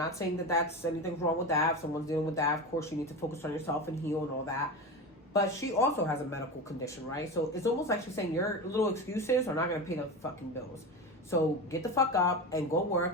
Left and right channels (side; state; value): both; normal; correlation 0.24